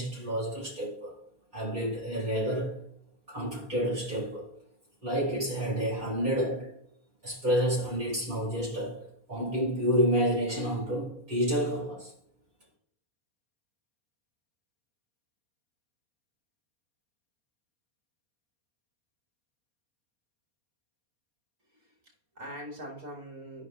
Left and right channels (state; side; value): late; left; 4.2 ms